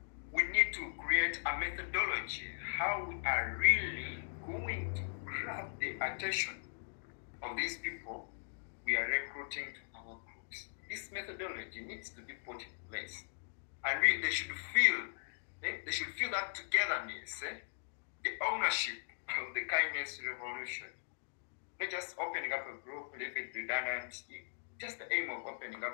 We need to create a methodology how we are really going to grab the attention of these people we are recruiting to our groups. This methodology needs to be put in place, and they should feel that togetherness, the ownership of the kindness revolution. Not just opening up a group, leave it redundant. Just the aim of opening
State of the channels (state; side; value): silent; right; digital silence